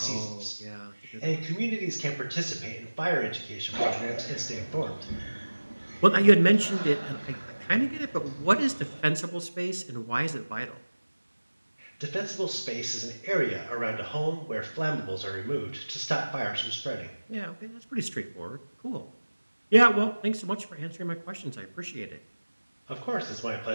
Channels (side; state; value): both; inverted; correlation -1.00